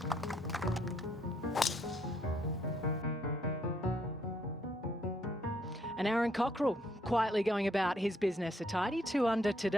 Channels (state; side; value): normal; both; correlation 0.70